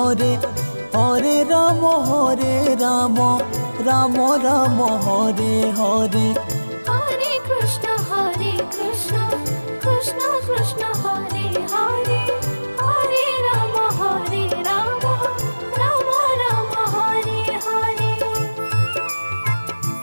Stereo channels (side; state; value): both; inverted; correlation -1.00